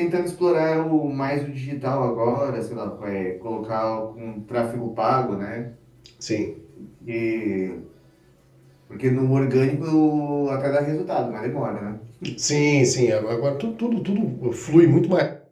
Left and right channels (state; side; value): identical; both; correlation 1.00